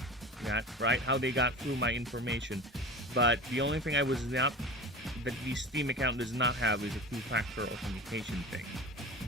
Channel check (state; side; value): normal; both; correlation 0.34